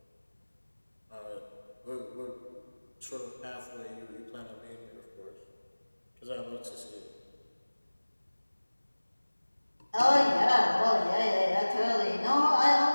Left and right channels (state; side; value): inverted; both; correlation -1.00